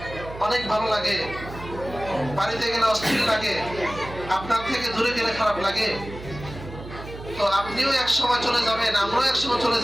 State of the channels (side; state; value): right; noise; hum, 13 dB below the sound